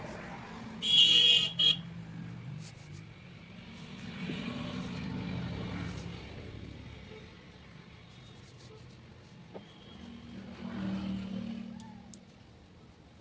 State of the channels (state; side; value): identical; both; correlation 1.00